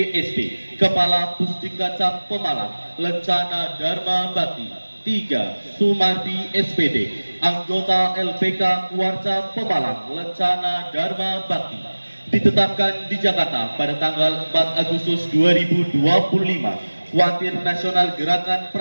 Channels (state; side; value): inverted; both; correlation -1.00